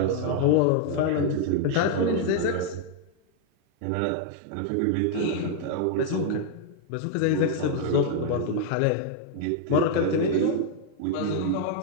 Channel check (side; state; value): both; different; correlation 0.00